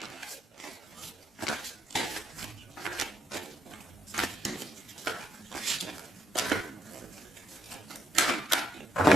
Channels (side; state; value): both; normal; correlation 0.77